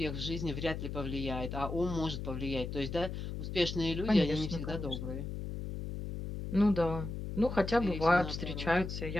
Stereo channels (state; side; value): noise; left; hum, 6 dB below the sound